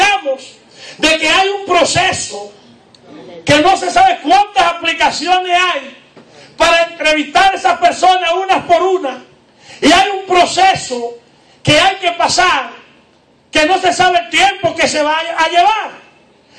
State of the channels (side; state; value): both; identical; correlation 1.00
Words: de que hay un proceso, que no se sabe cuántas aplicaciones hay para entrevistar a esas personas unas por una. Y hay un proceso que hay que pasar, que no se sabe el tiempo que se va a llevar.